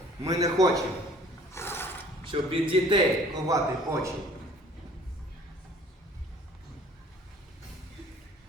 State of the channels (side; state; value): both; normal; correlation 0.52